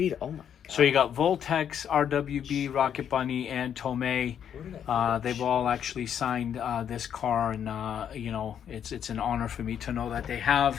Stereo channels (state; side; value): quieter; right; 8.9 dB